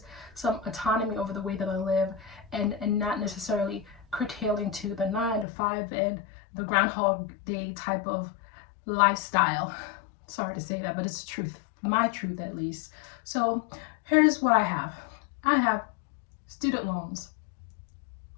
some autonomy over the way that I live, and not necessarily curtailing to the 9 to 5 and the Groundhog Day type of lifestyle. Sorry to say that, but it's the truth, my truth at least. So here's what I have. I have student loans,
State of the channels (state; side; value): drops out; right; at 5.5 s